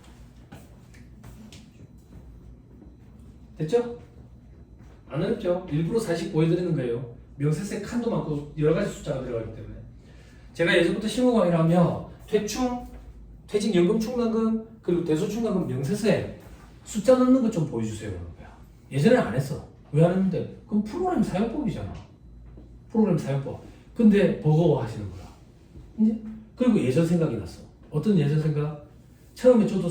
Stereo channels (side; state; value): both; identical; correlation 1.00